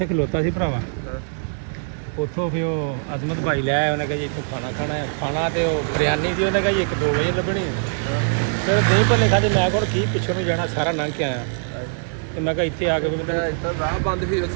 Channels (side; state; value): left; silent; digital silence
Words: ਖਲੋਤਾ ਸੀ ਭਰਾਵਾ। ਉੱਥੋਂ ਫਿਰ ਉਹ ਅਜ਼ਮਤ ਭਾਈ ਲੈ ਆਇਆ। ਉਹਨੇ ਕਿਹਾ ਜੀ ਇੱਥੋਂ ਖਾਣਾ ਖਾਣਾ ਹੈ। ਖਾਣਾ ਤੇ ਉਹ ਬਿਰਿਆਨੀ ਦੀ ਉਹਨੇ ਕਿਹਾ ਜੀ 1-2 ਵਜੇ ਲੱਭਣੀ ਹੈ। ਫਿਰ ਦਹੀਂ ਭੱਲੇ ਖਾਦੇ। ਮੈਂ ਕੋਲ ਕੀ ਪਿੱਛੋਂ ਨੂੰ ਜਾਣਾ ਸਾਰਾ ਲੰਘ ਕੇ ਆਇਆ ਤੇ ਮੈਂ ਕਿਹਾ ਇੱਥੇ ਆ ਕੇ ਰਾਹ ਬੰਦ ਸੀ